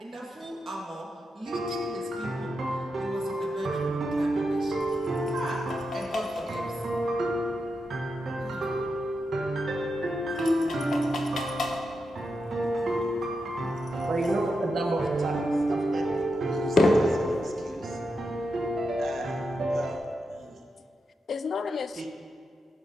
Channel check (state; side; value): normal; both; correlation 0.86